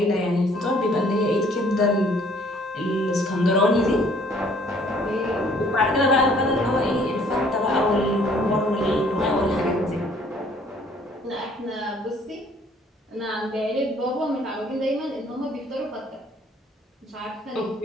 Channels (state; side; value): normal; both; correlation 0.59